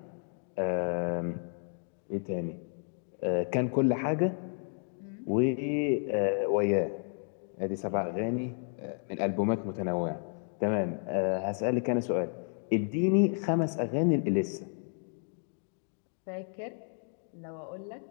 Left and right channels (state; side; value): silent; right; 56 dB below the other